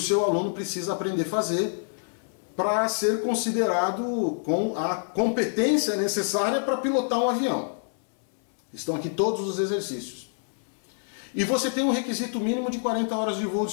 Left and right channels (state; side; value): silent; right; 60 dB below the other